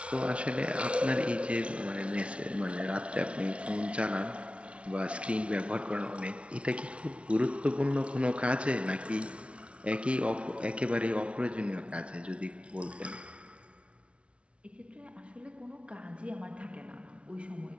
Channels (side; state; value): left; late; 0.060 ms